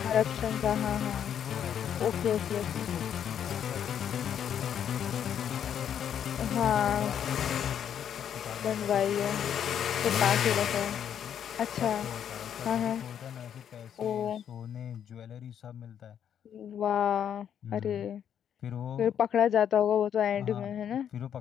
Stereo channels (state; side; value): quieter; right; 9.0 dB